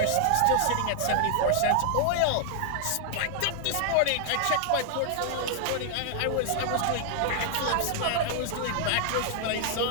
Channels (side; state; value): both; different; correlation 0.00